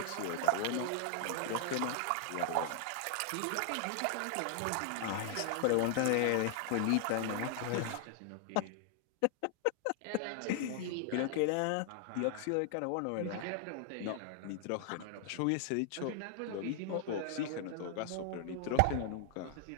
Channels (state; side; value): different; both; correlation 0.00